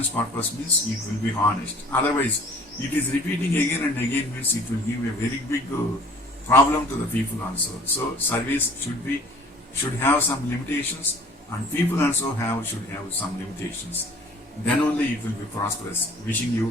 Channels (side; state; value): both; normal; correlation 0.51